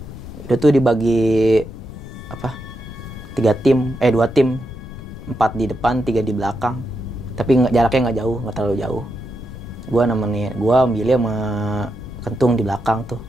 Itu tuh dibagi 2 tim, 4 di depan, 3 di belakang. Tapi jaraknya nggak jauh, nggak terlalu jauh. Gue ambilnya sama Kentung di belakang tuh.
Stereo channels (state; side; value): noise; left; rumble, 12 dB below the sound